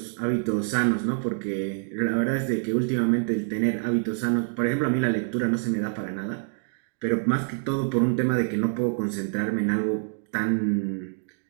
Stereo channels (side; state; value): left; silent; 61 dB below the other